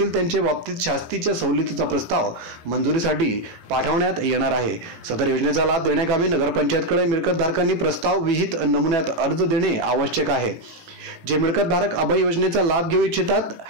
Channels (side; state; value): left; late; 18 ms